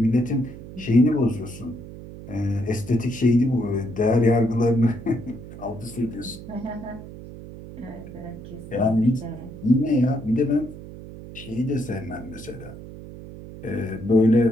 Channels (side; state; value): right; noise; hum, 14 dB below the sound